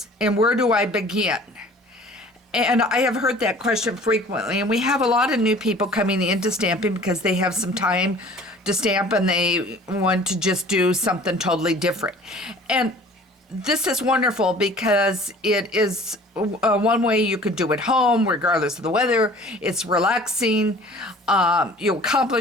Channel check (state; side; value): normal; both; correlation 0.48